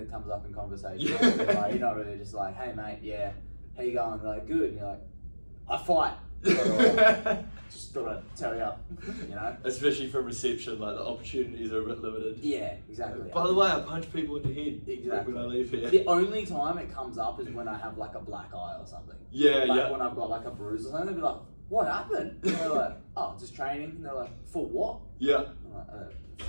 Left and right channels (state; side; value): inverted; both; correlation -1.00